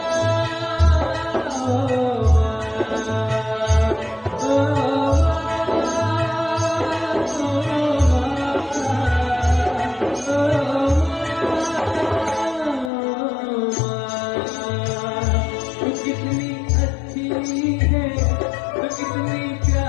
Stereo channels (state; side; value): drops out; right; at 12.9 s